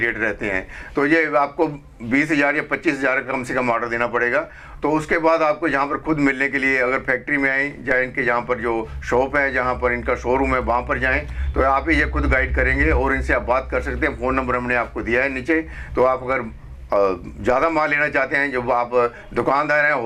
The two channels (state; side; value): identical; both; correlation 1.00